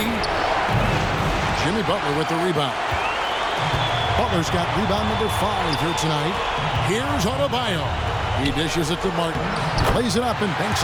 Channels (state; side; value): identical; both; correlation 1.00